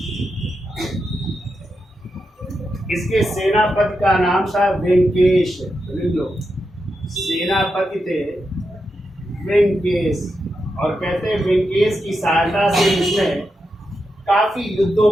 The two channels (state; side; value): normal; both; correlation 0.87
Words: इसके सेनापति का नाम था वेंकेश। लिख लो, सेनापति थे वेंकेश, और कहते हैं वेंकेश की सहायता से उसने काफी युद्धों